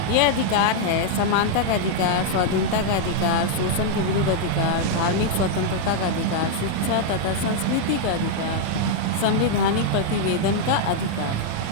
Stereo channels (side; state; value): both; different; correlation 0.00